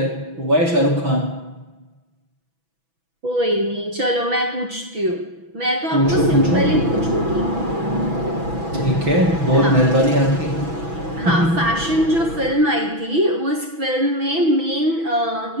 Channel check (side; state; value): left; late; 6.1 ms